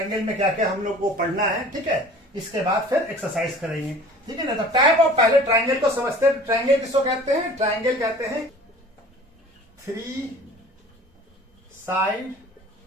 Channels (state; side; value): normal; both; correlation 0.45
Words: में क्या क्या हम लोग को पढ़ना है। ठीक है, इसके बाद फिर एक्सरसाइज करेंगे। ठीक है ना। तो टाइप ऑफ, पहले ट्रायंगल को समझते हैं। ट्रायंगल किसको कहते हैं? ट्रायंगल कहते हैं 3 साइड